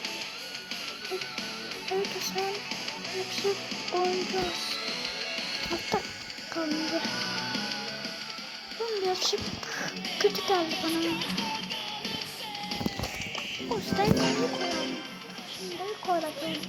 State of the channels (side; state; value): both; identical; correlation 1.00